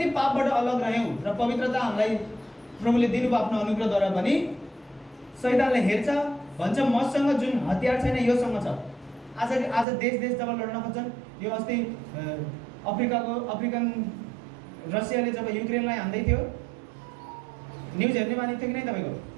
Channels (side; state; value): left; drops out; at 9.9 s